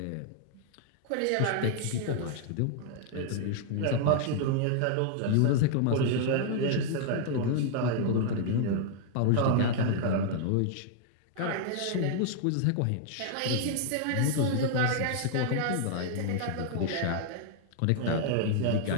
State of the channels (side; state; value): both; different; correlation -0.01